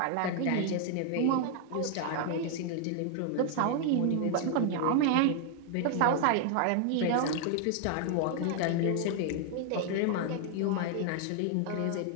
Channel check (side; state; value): both; different; correlation 0.00